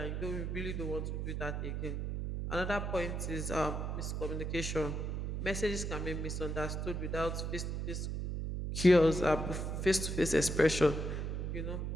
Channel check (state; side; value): noise; right; hum, 2 dB below the sound